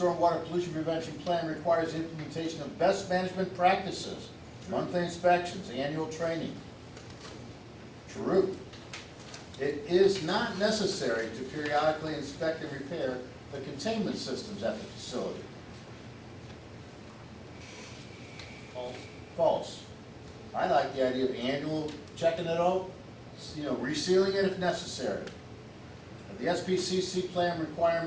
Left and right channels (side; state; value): both; identical; correlation 1.00